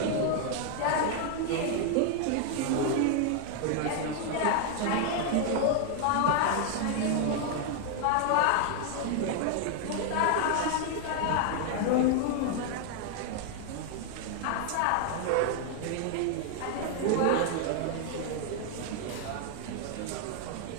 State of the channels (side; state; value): both; different; correlation 0.00